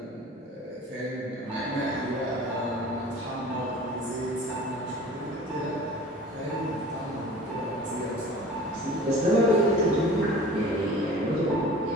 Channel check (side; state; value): both; normal; correlation 0.43